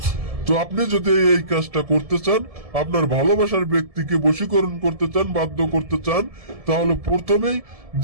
তো আপনি যদি এই কাজটা করতে চান, আপনার ভালোবাসার ব্যক্তিকে বশীকরণ করতে চান, বাধ্য করতে চান, তাহলে প্রথমেই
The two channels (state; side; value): late; left; 1.7 ms